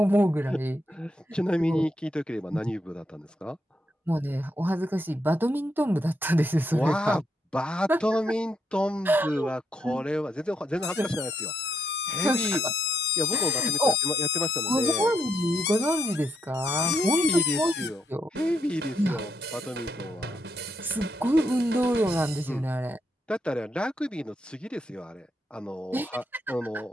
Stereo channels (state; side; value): normal; both; correlation 0.78